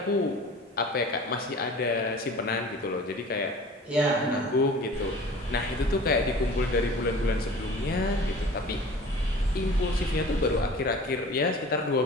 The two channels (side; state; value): both; normal; correlation 0.43